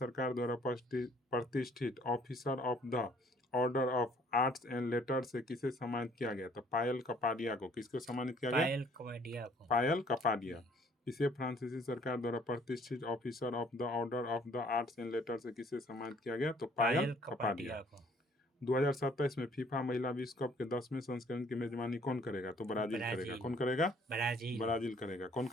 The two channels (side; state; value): both; normal; correlation 0.59